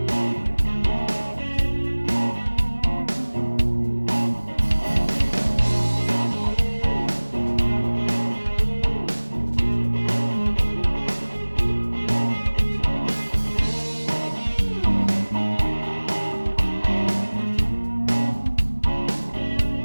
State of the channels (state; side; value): inverted; both; correlation -1.00